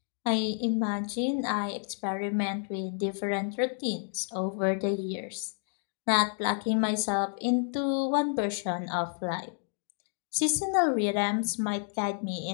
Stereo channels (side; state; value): right; silent; 58 dB below the other